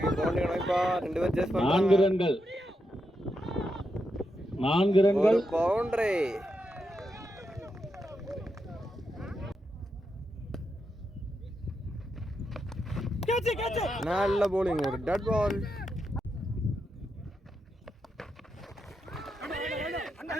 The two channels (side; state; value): both; normal; correlation 0.85